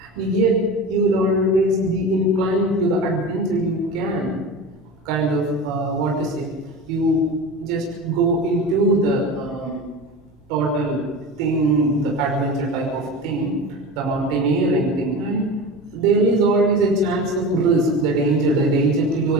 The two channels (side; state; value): left; noise; rumble, 30 dB below the sound